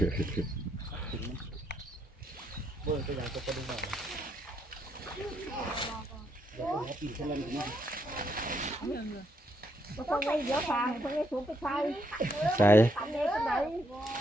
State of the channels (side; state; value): both; normal; correlation 0.75